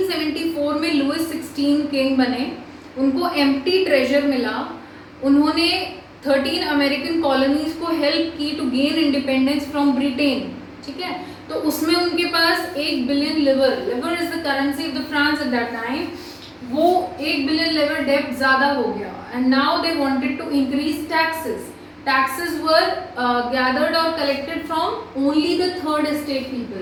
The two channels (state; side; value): identical; both; correlation 1.00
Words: में लुइस 16 किंग बने, उनको एम्प्टी ट्रेजर मिला, उन्होंने 13 अमेरिकन कॉलोनीज को हेल्प की to gain independence from Britain. ठीक है, तो उसमें उनके पास 1 billion livre is the currency of the France at that time. वो 1 बिलियन लिवर डेब्ट ज्यादा हो गया and now they wanted to increase taxes. Taxes were gathered or collected from only the third estate people.